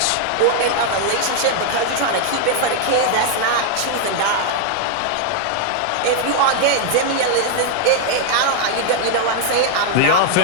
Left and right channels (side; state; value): both; different; correlation 0.00